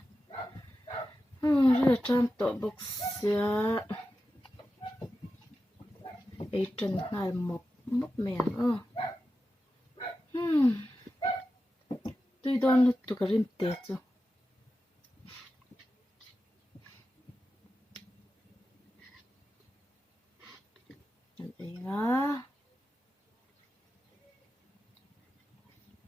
ri tram to box sia e tran ngal mop mop men tui don lu tu karim te chu an nga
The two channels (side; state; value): both; normal; correlation 0.92